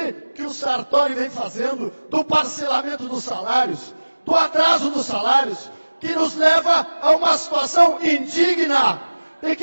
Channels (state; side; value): inverted; both; correlation -1.00